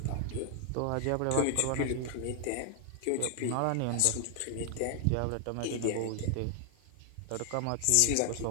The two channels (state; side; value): different; both; correlation 0.00